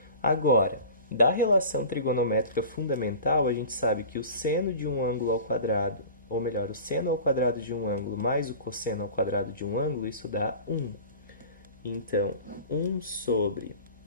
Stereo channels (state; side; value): inverted; both; correlation -0.39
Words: Agora, da relação trigonométrica fundamental, a gente sabe que o seno de um ângulo ao quadrado, ou melhor, o seno ao quadrado de um ângulo mais o cosseno ao quadrado de um ângulo, isso dá 1. Então, 1 sobre